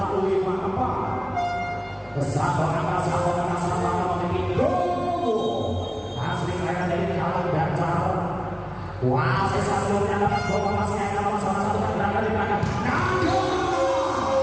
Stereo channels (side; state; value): both; identical; correlation 1.00